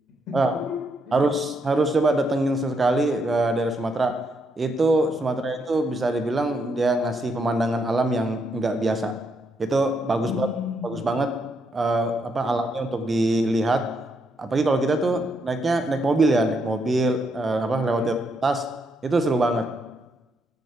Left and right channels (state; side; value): normal; both; correlation 0.77